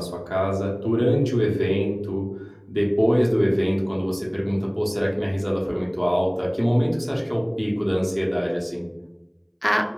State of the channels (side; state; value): both; identical; correlation 1.00